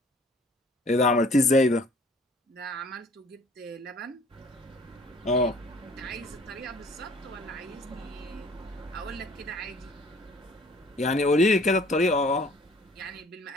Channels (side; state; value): both; normal; correlation 0.54